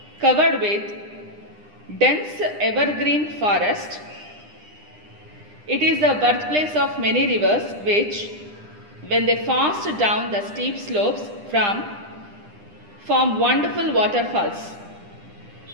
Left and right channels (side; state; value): left; late; 9.9 ms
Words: covered with dense evergreen forest. It is the birthplace of many rivers which, when they fast down the steep slopes form wonderful waterfalls.